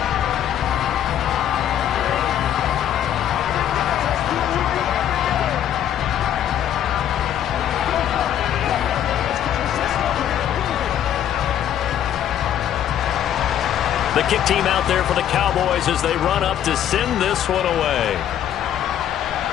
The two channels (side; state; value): right; quieter; 10.5 dB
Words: The kick team out there for the Cowboys as they run up to send this one away.